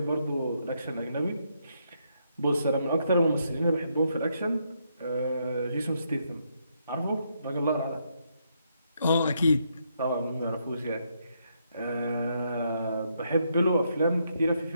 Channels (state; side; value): inverted; both; correlation -0.77